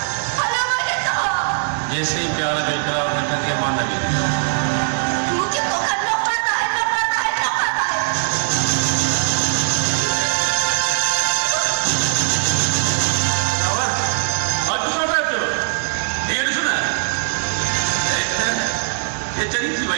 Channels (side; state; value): left; silent; 66 dB below the other